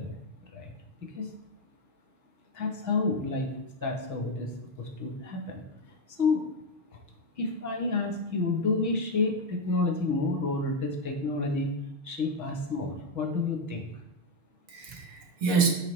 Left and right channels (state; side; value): late; left; 6.7 ms